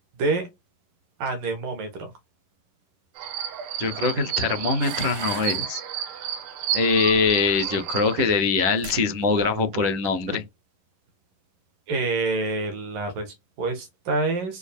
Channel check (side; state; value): left; late; 11 ms